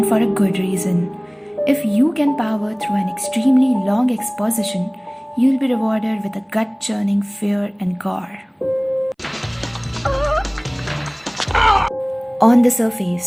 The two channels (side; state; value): both; identical; correlation 1.00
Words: for a good reason. If you can power through an extremely long exposition, you'll be rewarded with a gut-churning fear and gore. On the